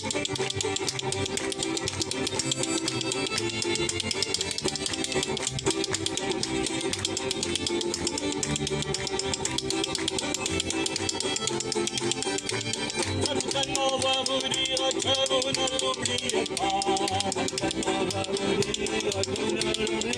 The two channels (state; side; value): identical; both; correlation 1.00